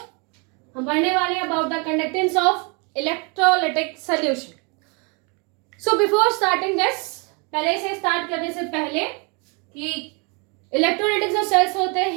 हम पढ़ने वाले हैं about the conductance of electrolytic solution. So before starting this, पहले से स्टार्ट करने से पहले कि इलेक्ट्रोलाइटिक जो सेल्स होते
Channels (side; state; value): left; quieter; 33.0 dB